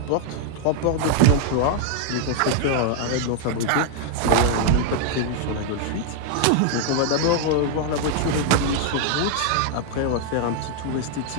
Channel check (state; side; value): different; both; correlation 0.00